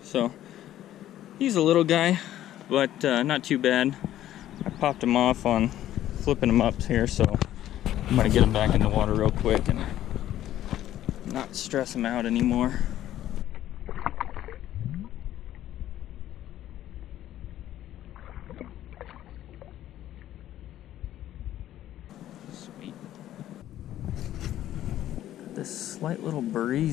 so he's a little guy, but not too bad. I popped him off on flipping him up here, so I'm gonna get him back in the water real quick and not stress him out anymore. Sweet. Got this slight little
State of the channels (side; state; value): right; quieter; 12.7 dB